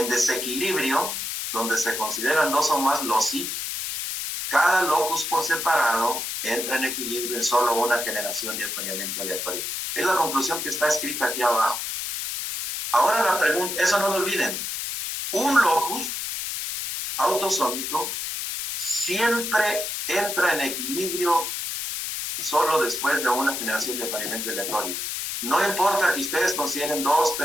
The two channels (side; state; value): left; noise; hiss, 4 dB below the sound